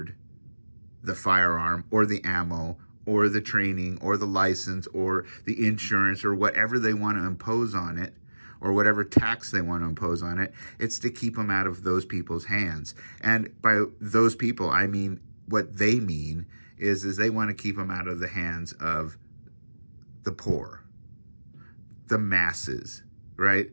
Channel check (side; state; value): both; inverted; correlation -1.00